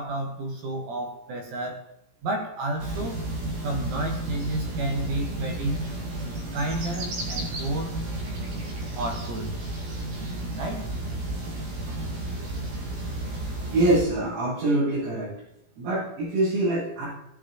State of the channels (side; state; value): left; late; 17 ms